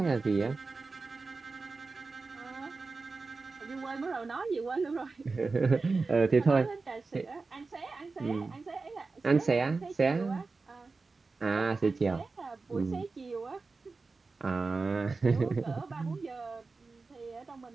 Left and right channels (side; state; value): left; quieter; 4.0 dB